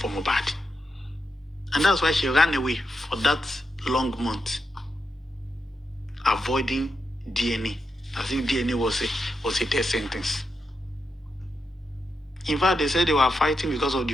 Mohbad. And that's why she ran away for that long month, avoiding DNA, as if DNA was a death sentence. In fact, they said they were fighting because of the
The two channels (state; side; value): normal; both; correlation 0.86